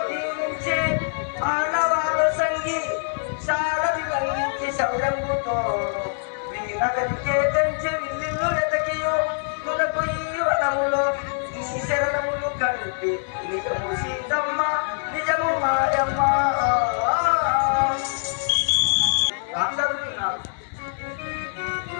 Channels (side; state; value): right; silent; digital silence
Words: దీవించి ఆడవాళ్ళు సంగి శారది లంఘించి శౌరంగుతో వీరగదికే తెంచి విల్లిల్లు ఎతకియు కులకు ఈ వనములో నీ శరణములు కలిపి నిజము సీతమ్మ నిజము మాయమ్మ చదువుతున్నారు